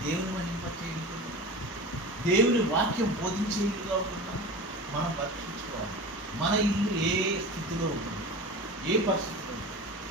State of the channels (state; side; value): normal; both; correlation 0.31